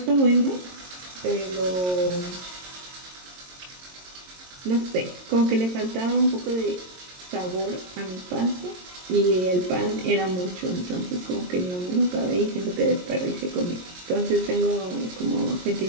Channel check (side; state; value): left; late; 22 ms